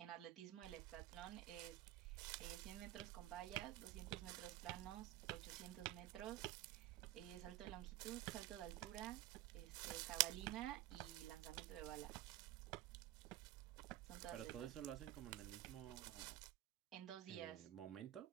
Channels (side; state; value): left; quieter; 14.9 dB